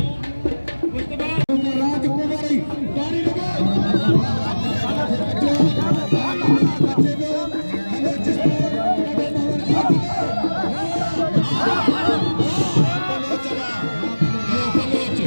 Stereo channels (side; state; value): both; inverted; correlation -1.00